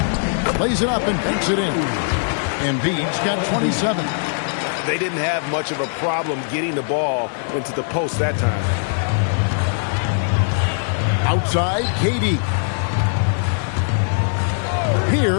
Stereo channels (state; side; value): silent; right; digital silence